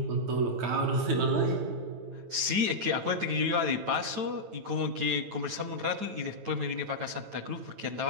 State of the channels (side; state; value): left; late; 9.1 ms